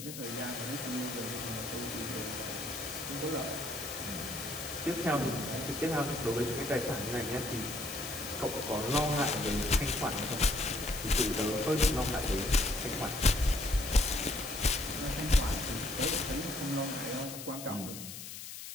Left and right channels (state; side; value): noise; left; hiss, 10 dB below the sound